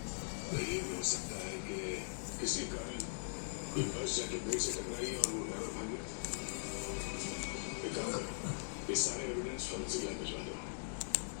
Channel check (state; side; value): silent; right; digital silence